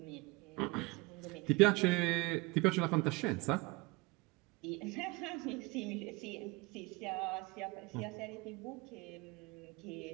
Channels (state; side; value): quieter; left; 25.0 dB